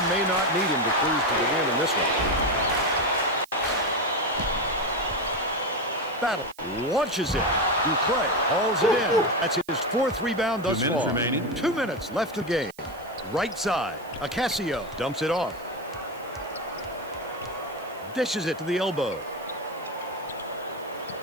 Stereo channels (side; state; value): right; noise; hiss, 24 dB below the sound